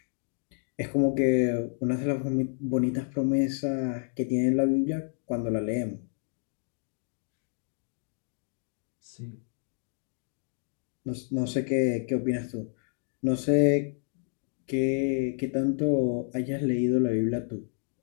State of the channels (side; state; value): right; silent; 58 dB below the other